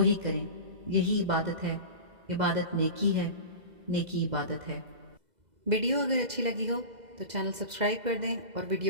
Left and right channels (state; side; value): late; left; 2.0 ms